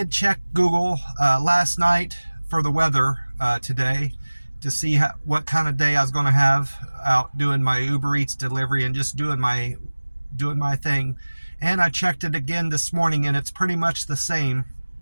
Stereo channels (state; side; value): inverted; both; correlation -1.00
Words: check Google last night for the weather today to see what kind of day I was going to have out doing my Uber Eats delivery and just doing my thing. And I checked it again this morning, and it's pretty much the same